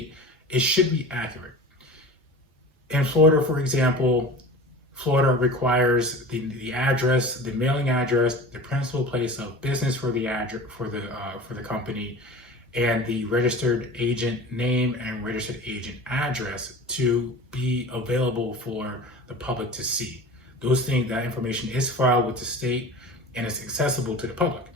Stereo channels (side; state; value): both; normal; correlation 0.36